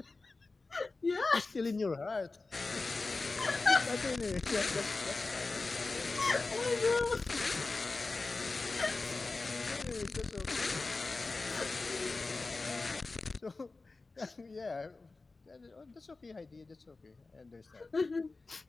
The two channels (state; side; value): quieter; right; 3.6 dB